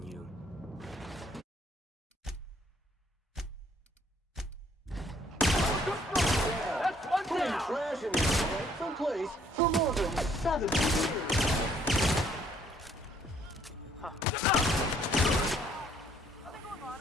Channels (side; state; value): both; normal; correlation 0.64